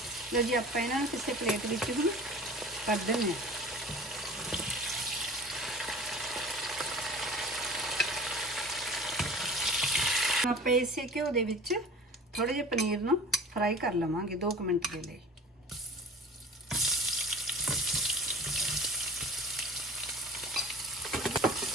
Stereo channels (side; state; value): both; normal; correlation 0.43